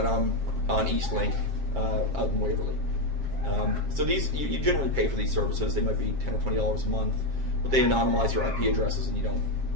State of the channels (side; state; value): left; late; 7.4 ms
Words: I'm on Eastlink out in Waverly. So these, you generally pay for these services. They might be $10 or $20 a month, but they anonymize your IP addresses and you don't